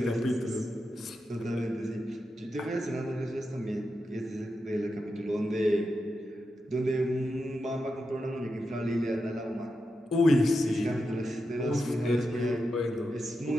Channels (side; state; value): both; normal; correlation 0.88